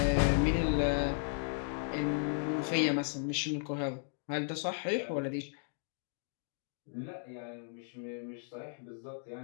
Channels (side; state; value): right; silent; digital silence